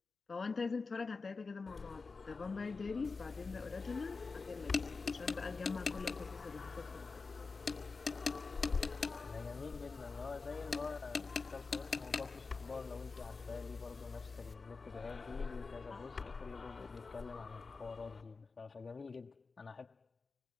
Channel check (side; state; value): right; quieter; 4.3 dB